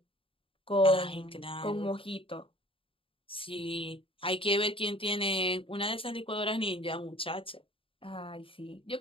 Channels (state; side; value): late; right; 0.26 ms